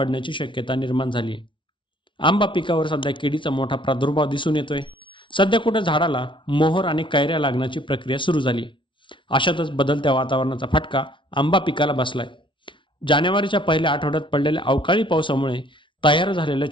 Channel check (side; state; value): right; late; 0.24 ms